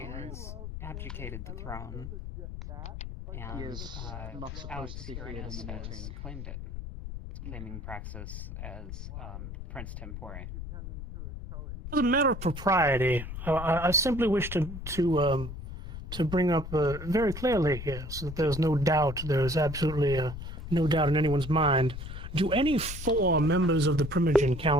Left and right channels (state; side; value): noise; left; rumble, 9 dB below the sound